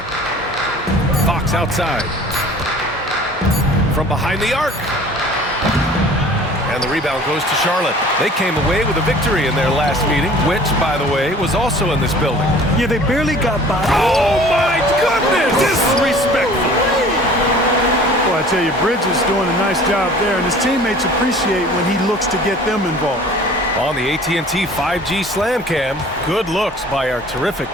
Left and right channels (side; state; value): both; normal; correlation 0.47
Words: Fox outside. From behind the arc. And the rebound goes to Charlotte. They came away with a victory in their last meeting, which, by the way, was also in this building. Yeah, they barely got by. Oh, my goodness! Disrespectful. Well, I tell you, Bridges doing a nice job there, and his teammates appreciate when he looks to get them involved. On the AT&T 5G Slam Cam, good looks by our terrific